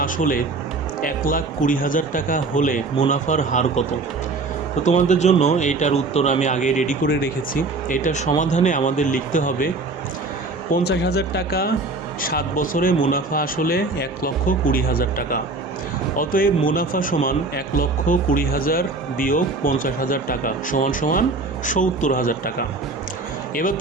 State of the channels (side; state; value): left; quieter; 3.6 dB